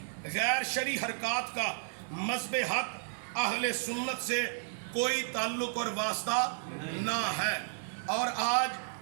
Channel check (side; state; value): left; silent; digital silence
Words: غیر شرعی حرکات کا مذہب حق اہل سنت سے کوئی تعلق اور واسطہ نہ ہے۔ اور آج